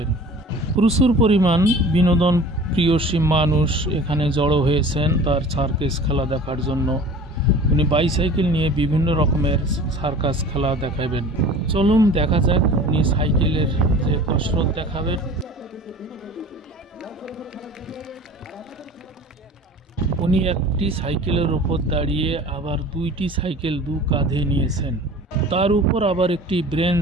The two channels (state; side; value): normal; both; correlation 0.42